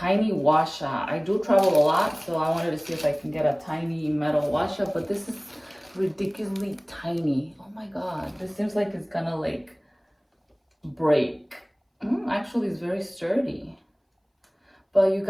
washa. I do travel a lot, so I wanted to see if I can get a tiny metal washa, but this is ridiculously tiny. Oh my god, this seems like it's gonna like break. Actually, it's very sturdy. But you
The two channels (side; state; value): both; identical; correlation 1.00